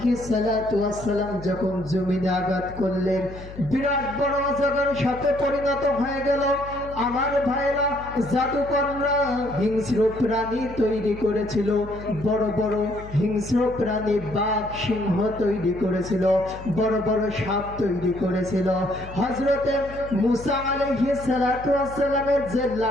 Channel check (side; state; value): left; noise; hum, 14 dB below the sound